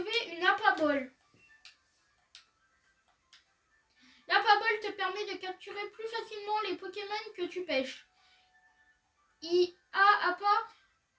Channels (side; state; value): both; identical; correlation 1.00